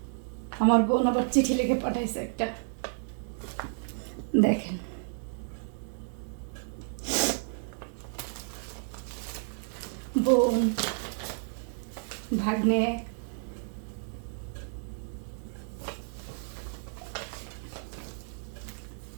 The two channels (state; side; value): silent; left; digital silence